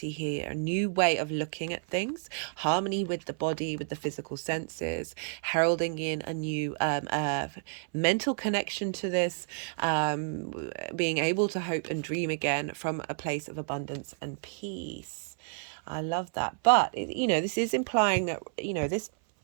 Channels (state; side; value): silent; left; 58 dB below the other